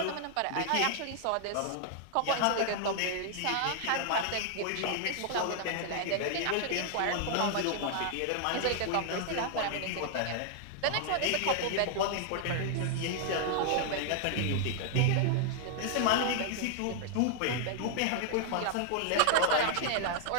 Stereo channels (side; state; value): both; different; correlation 0.00